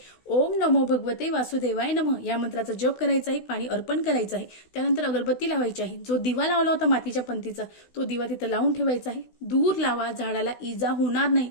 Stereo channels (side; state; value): right; late; 16 ms